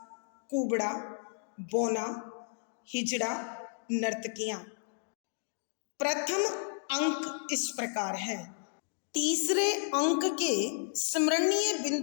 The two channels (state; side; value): silent; right; digital silence